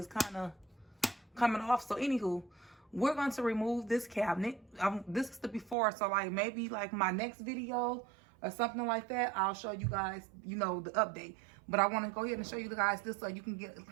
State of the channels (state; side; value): drops out; left; at 5.8 s